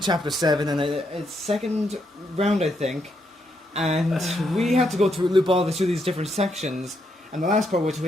7, and it's second round, I think, and we had to go through loop all through these different sections. And the last part, which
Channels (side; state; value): both; normal; correlation 0.78